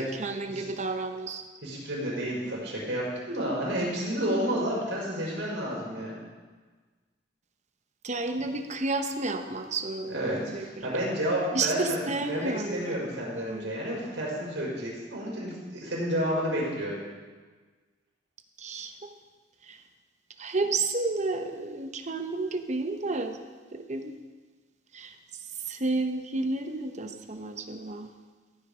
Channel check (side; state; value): both; normal; correlation 0.31